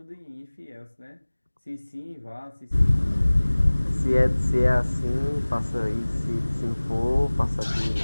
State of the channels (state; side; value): inverted; both; correlation -1.00